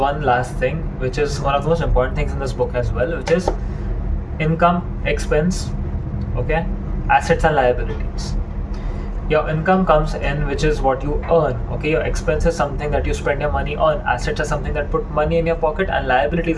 last thing, which is one of the most important things in this book as well, which is income, expense, okay, assets and liabilities. Your income comes in, which is what you earn. Okay, your expense is something that you spend your money on. Assets are something that put money in your pocket, and liabilities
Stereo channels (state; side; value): identical; both; correlation 1.00